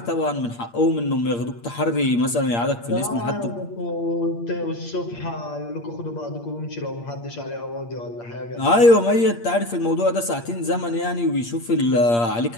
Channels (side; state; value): right; late; 8.6 ms